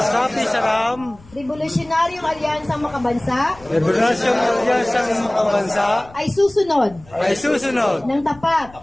Revolusyonaryong Alyansang Makabansa. Revolusyong Alyansang Makabansa. Ay susunod. Ng tapat.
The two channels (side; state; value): left; noise; rumble, 23 dB below the sound